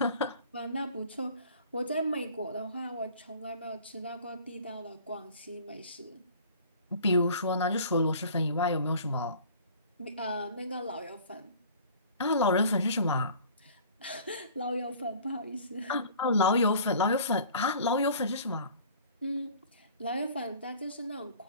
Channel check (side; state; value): both; inverted; correlation -0.48